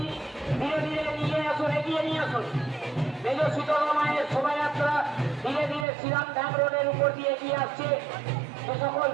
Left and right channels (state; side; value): drops out; left; at 5.9 s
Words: ধীরে ধীরে নিয়ে আসুন, এগিয়ে নিয়ে আসুন। মেজ শীতলা মায়ের শোভাযাত্রা ধীরে ধীরে শ্রীরাম ধাম রোডের উপর দিয়ে এগিয়ে আসছে। যে সকল